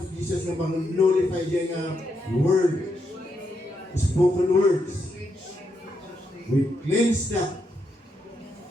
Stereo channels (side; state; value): both; normal; correlation 0.81